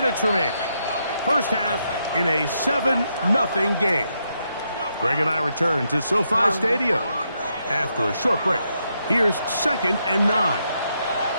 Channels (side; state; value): both; inverted; correlation -0.80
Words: remaining. First half in a 7-0 game. Greg and I return to SoFi Stadium after a short break. Here's 2nd and 9.